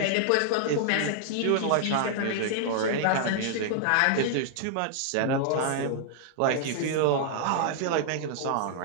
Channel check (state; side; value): different; both; correlation -0.01